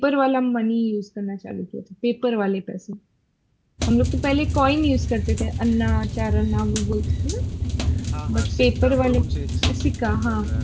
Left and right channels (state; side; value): identical; both; correlation 1.00